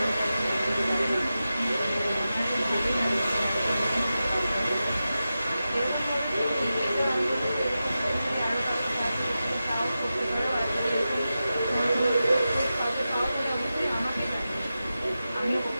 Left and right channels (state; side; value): inverted; both; correlation -0.93